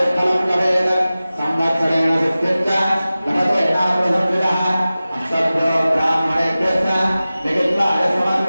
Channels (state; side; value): inverted; both; correlation -0.96